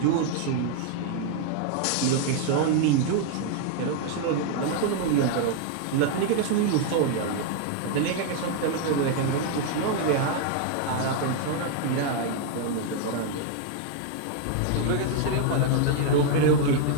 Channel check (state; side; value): different; both; correlation 0.00